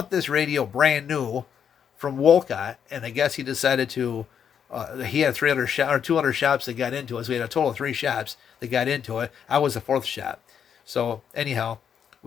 this radio brand new from Wolcott, and I guess he decided to, he had 200 shops that got into it, so we had a total of 3 shops that got into it. I was the 4th shop. So anyhow,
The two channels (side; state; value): right; quieter; 8.0 dB